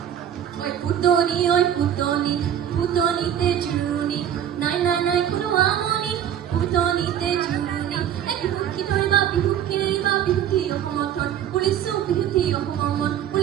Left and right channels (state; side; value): quieter; left; 9.9 dB